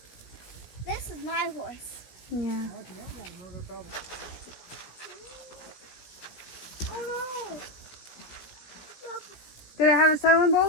This is my horse. Yeah. Oh no! Did it have a settling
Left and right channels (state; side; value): late; right; 17 ms